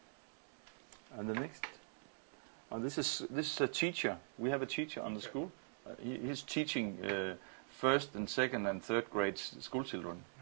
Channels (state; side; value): silent; left; digital silence